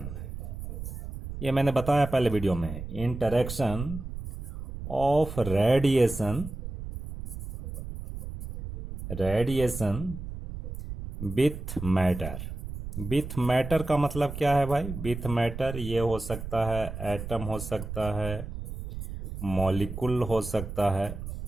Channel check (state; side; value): noise; right; rumble, 8 dB below the sound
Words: ये मैंने बताया पहले वीडियो में, interaction of radiation with matter का मतलब क्या है भाई? with matter ये हो सकता है एटम, हो सकता है मॉलिक्यूल, हो सकता है